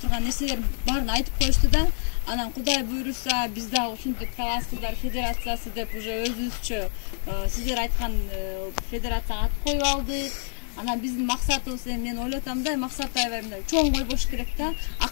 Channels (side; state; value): right; silent; 60 dB below the other